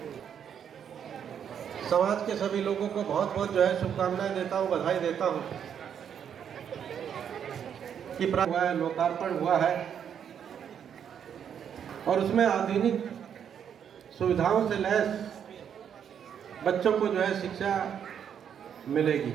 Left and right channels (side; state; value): left; quieter; 8.3 dB